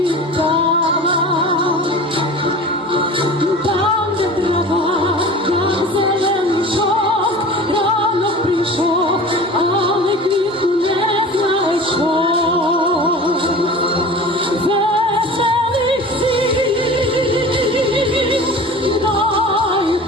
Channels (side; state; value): both; normal; correlation 0.38